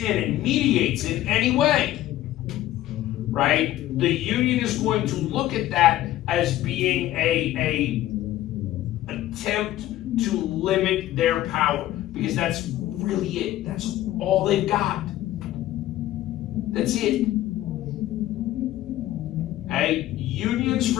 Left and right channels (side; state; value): right; quieter; 14.3 dB